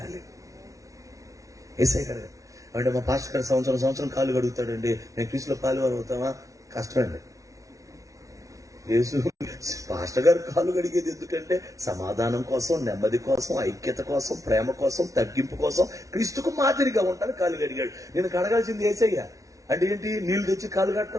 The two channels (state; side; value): late; left; 0.16 ms